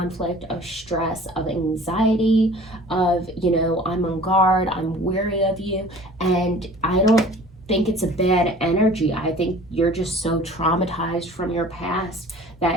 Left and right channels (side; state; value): both; normal; correlation 0.46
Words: of stress, of anxiety, of, you know, I'm on guard, I'm weary of you. And I don't think it's a bad energy. I think you're just so traumatized from your past